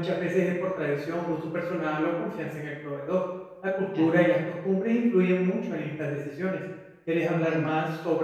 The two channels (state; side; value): identical; both; correlation 1.00